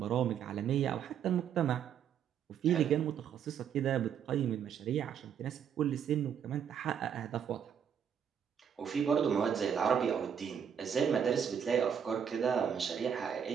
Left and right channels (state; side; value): quieter; left; 8.1 dB